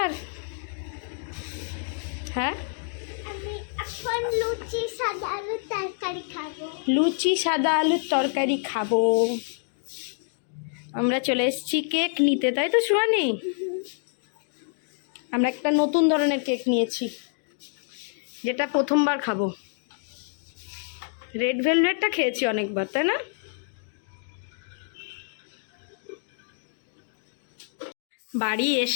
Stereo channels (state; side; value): silent; right; digital silence